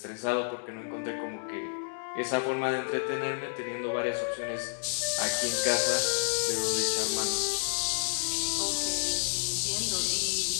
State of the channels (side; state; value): right; silent; 58 dB below the other